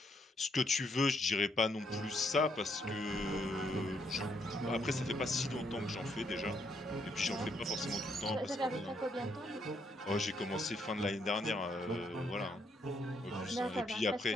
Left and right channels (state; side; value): normal; both; correlation 0.74